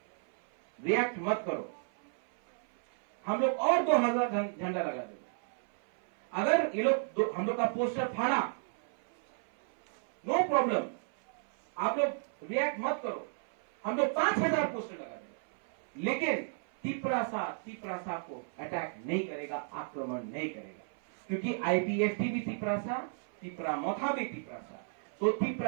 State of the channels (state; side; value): silent; left; 56 dB below the other